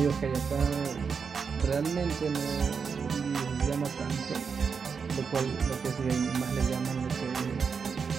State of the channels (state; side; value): quieter; left; 5.8 dB